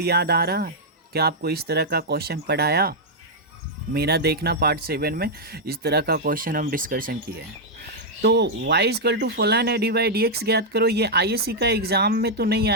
याद आ रहा है? क्या आपको इस तरह का क्वेश्चन पढ़ाया? मेरा देखना पार्ट 7 में इस तरह का क्वेश्चन हम डिस्कशन किए हैं। तो y इक्वल टू फलन है, डी बाई डी एक्स ज्ञात करो। ये आईएससी का एग्ज़ाम में तो नहीं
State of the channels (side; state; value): both; normal; correlation -0.04